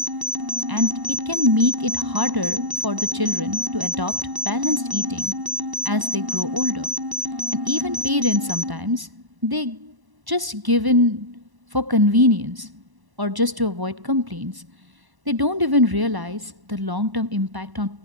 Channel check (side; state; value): left; late; 1.0 ms